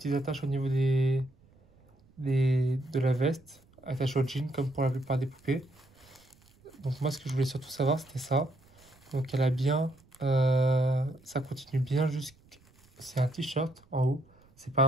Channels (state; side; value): noise; right; rumble, 30 dB below the sound